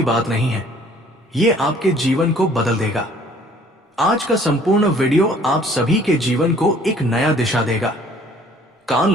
बात नहीं है। ये आपके जीवन को बदल देगा। आज का संपूर्ण वीडियो आप सभी के जीवन को एक नया दिशा देगा। कान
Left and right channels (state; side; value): normal; both; correlation 0.56